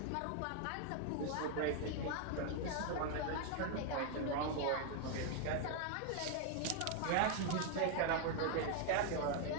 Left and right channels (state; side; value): different; both; correlation 0.00